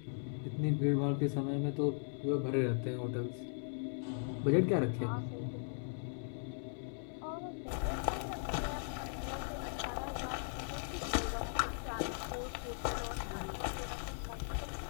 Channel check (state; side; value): silent; right; digital silence